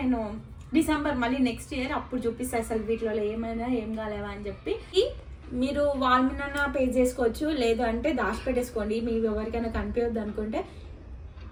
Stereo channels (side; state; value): both; identical; correlation 1.00